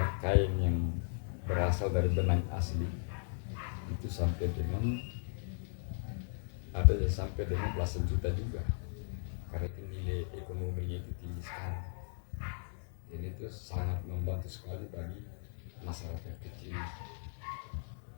kain yang berasal dari benang asli itu sampai dengan ada yang sampai dengan belasan juta juga, karena itu nilai ekonominya itu tinggi sekali. Jadi itu sangat membantu sekali bagi masyarakat kecil.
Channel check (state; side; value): silent; right; 53 dB below the other